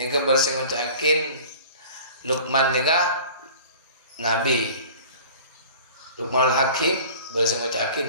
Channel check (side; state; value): both; inverted; correlation -0.44